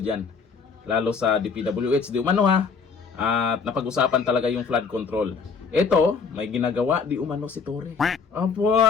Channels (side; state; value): right; quieter; 5.5 dB